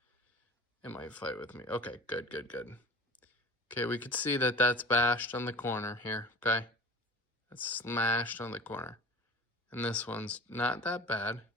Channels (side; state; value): both; normal; correlation 0.38